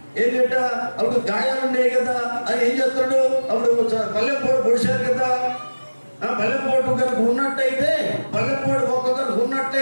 ఏం చేట, అప్పుడు గాయాలు ఉన్నాయి కదా, అది ఏం చేస్తాడు? అప్పుడు పల్లెపోటు పొడిచారు కదా, పల్లెపోటు కనుక ఉన్నట్టయితే, పల్లెపోటు ఒక్క కనుక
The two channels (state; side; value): inverted; both; correlation -1.00